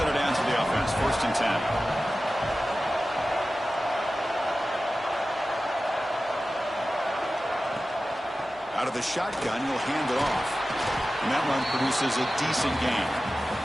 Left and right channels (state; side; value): normal; both; correlation 0.95